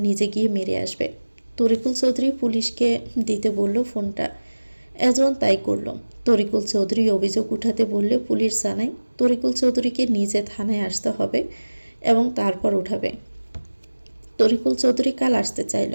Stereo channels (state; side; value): inverted; both; correlation -1.00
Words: নিজে গিয়ে মেরে আসবে। তরিকুল চৌধুরী পুলিশকে দিতে বলল ফোনটা। এজন তাই করল। তরিকুল চৌধুরী অভিযোগ উঠাতে বললে পুলিশ জানায় তরিকুল চৌধুরীকে নিজে থানায় আসতে হবে এবং তারপর উঠাবে। তরিকুল চৌধুরী কাল আসতে চাইল।